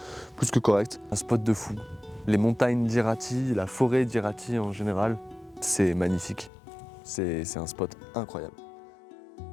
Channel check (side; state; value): right; drops out; at 6.5 s